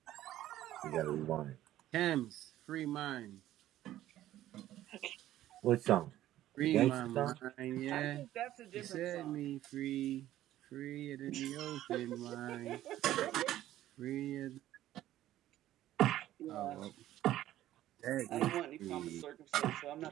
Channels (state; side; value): quieter; left; 13.6 dB